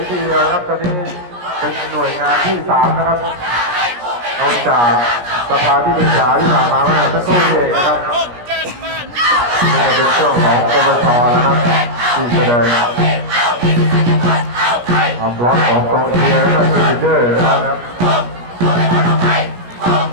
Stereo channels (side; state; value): left; late; 17 ms